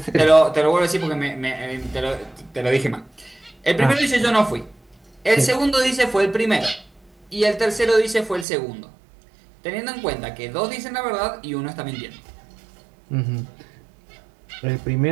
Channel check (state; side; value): drops out; left; at 8.5 s